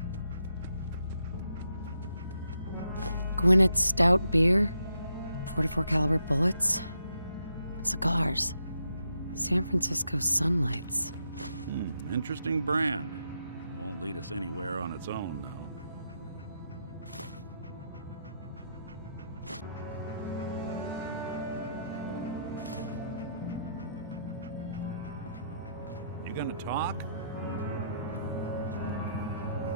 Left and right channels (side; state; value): both; inverted; correlation -0.78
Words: Gwinnett Stout beer, 44 caliber bullets, cigars, San Francisco Sunlights. Interesting brand. Won't lead us anywhere on its own, though. You gonna talk?